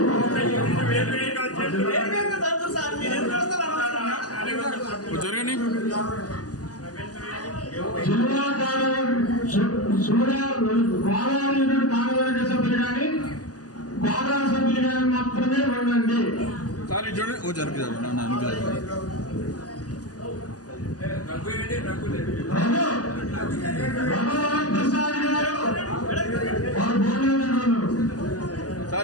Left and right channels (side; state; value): right; late; 0.68 ms